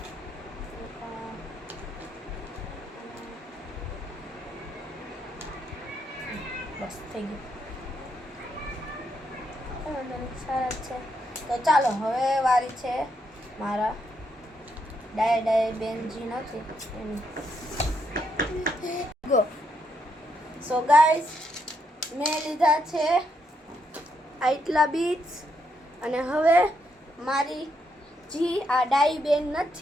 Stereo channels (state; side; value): normal; both; correlation 0.78